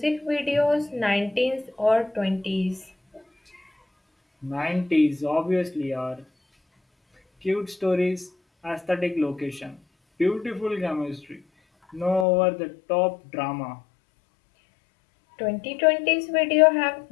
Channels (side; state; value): right; drops out; at 12.2 s